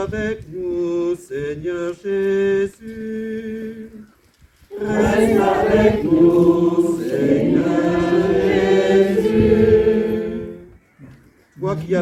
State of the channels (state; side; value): identical; both; correlation 1.00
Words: nous, Seigneur Jésus. Reste avec nous, Seigneur Jésus. Toi qui as